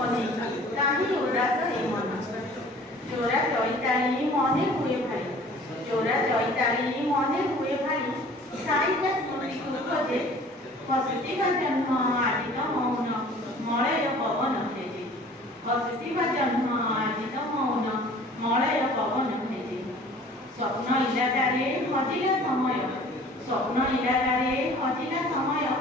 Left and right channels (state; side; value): normal; both; correlation 0.49